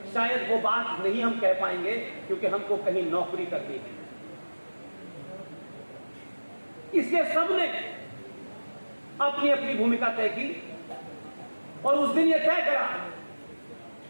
शायद वो बात नहीं हम कह पाएंगे, क्योंकि हमको कहीं नौकरी करनी है। इसलिए सबने अपनी अपनी भूमिका तय की और उस दिन ये तय करा,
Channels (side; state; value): both; inverted; correlation -1.00